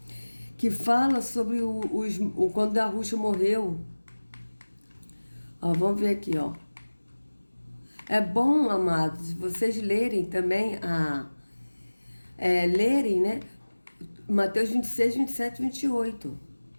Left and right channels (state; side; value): inverted; both; correlation -1.00